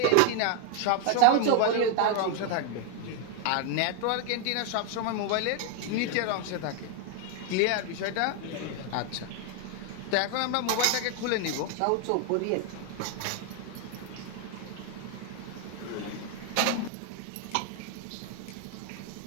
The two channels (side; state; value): both; different; correlation 0.00